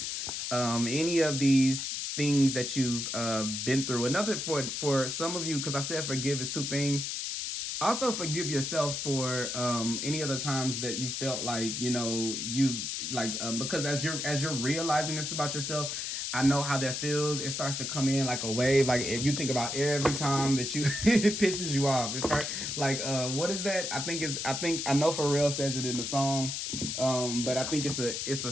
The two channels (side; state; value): left; noise; hiss, 3 dB below the sound